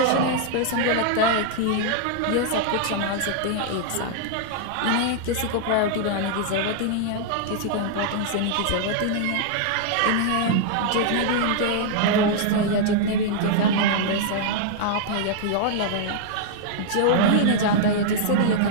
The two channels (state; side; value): different; both; correlation -0.01